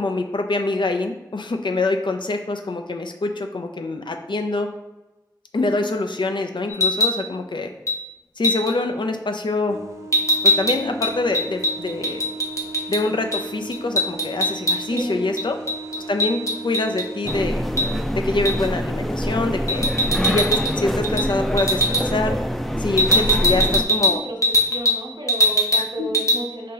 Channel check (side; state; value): both; normal; correlation 0.22